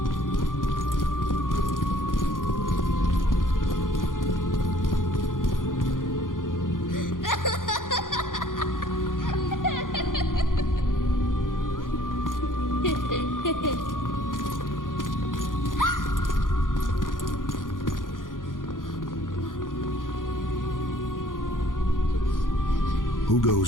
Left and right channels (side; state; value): right; late; 0.90 ms